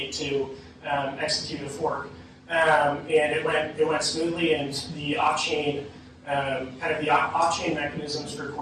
to execute a fork. And it went smoothly, and the off-chain off-chain mechanisms for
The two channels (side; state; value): both; identical; correlation 1.00